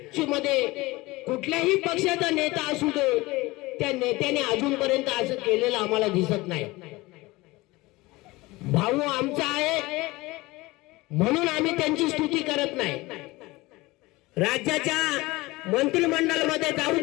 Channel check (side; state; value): right; quieter; 21.1 dB